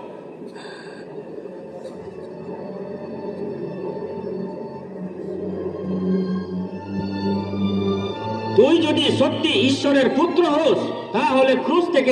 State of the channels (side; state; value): both; identical; correlation 1.00